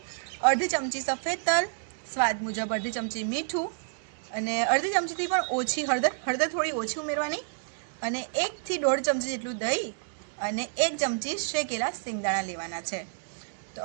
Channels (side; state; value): left; silent; digital silence